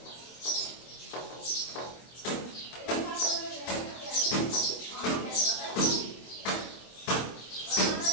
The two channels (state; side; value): late; right; 25 ms